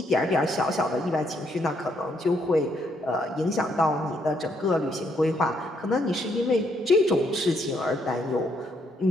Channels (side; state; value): both; normal; correlation 0.73